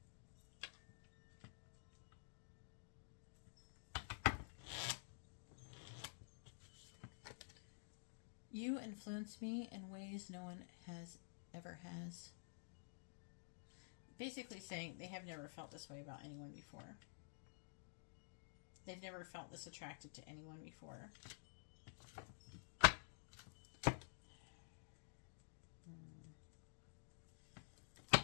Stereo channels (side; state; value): right; silent; digital silence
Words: You influence me in ways no one ever has. Basically saying they have never felt this way about anyone before. They've never felt this attracted to anyone before.